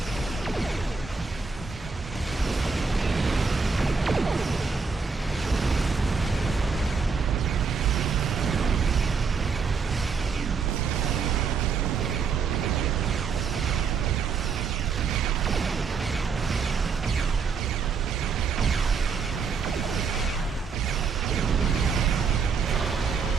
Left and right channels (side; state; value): left; quieter; 5.3 dB